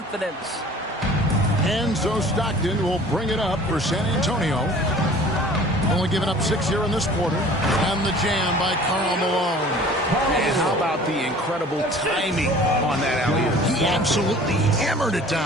And so Stockton will bring it up for San Antonio. Only giving up 6 here in this quarter. And the jam by Karl Malone. And how about the incredible timing on that alley-oop? He absolutely hammered it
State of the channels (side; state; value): both; normal; correlation 0.47